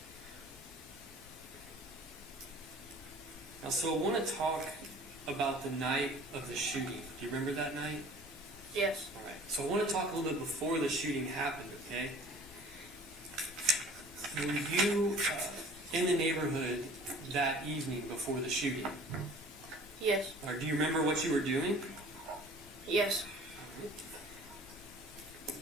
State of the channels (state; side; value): normal; both; correlation 0.48